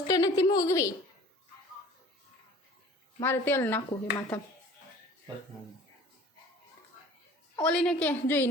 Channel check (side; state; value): both; normal; correlation 0.47